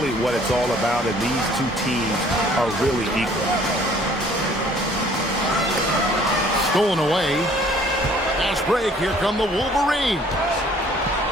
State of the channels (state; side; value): normal; both; correlation 0.57